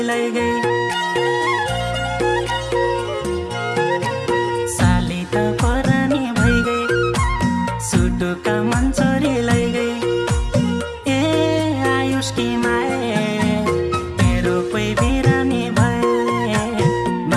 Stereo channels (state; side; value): identical; both; correlation 1.00